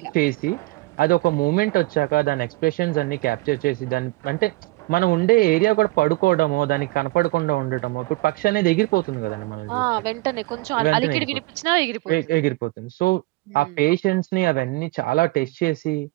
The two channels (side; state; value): left; quieter; 21.6 dB